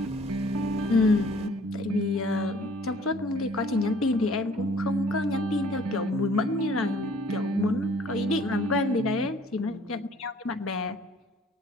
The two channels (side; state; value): both; normal; correlation 0.55